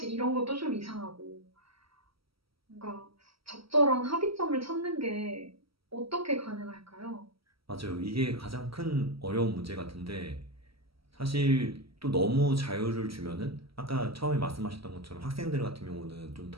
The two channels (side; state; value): left; late; 0.75 ms